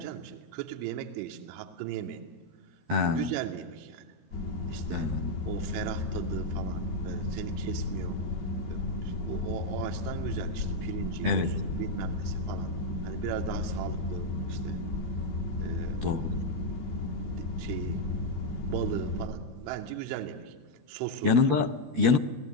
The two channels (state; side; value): late; left; 13 ms